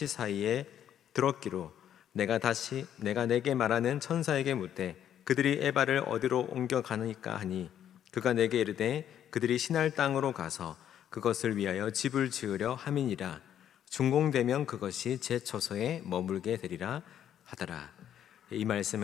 사이에 들었기로 내가 내게 말하는 천사에게 묻되 그들이 에바를 어디로 옮겨가니까 하니 그가 내게 이르되 그들이 신할 땅으로 가서 그것을 위하여 집을 지으려 함이니라. 준공되면 그것이 제 처소에 머물게 되리라 하더라. 이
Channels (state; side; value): quieter; right; 10.2 dB